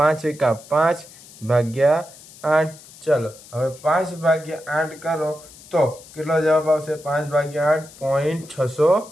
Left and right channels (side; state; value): left; noise; hiss, 21 dB below the sound